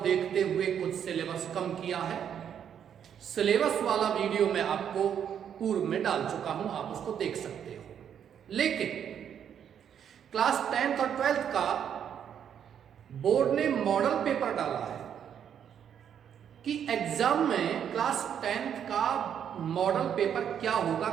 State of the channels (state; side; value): quieter; left; 8.7 dB